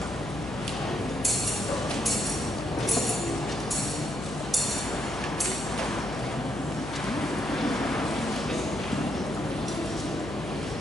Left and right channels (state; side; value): noise; left; hum, 9 dB below the sound